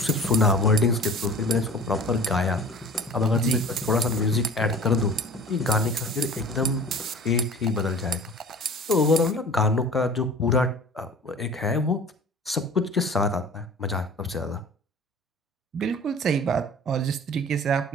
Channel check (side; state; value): both; normal; correlation 0.42